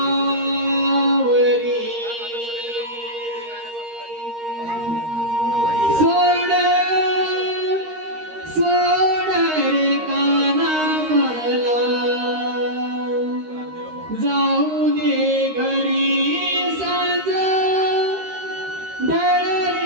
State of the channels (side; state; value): left; late; 13 ms